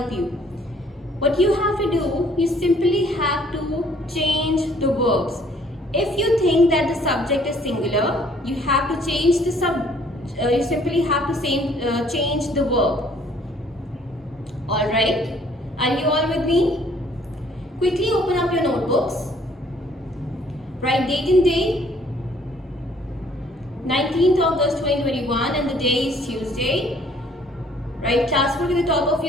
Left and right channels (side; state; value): both; normal; correlation 0.60